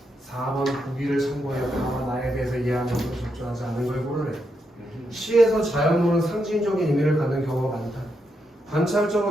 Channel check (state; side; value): normal; both; correlation 0.82